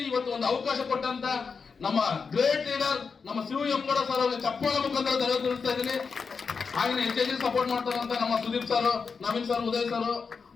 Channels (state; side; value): quieter; right; 5.3 dB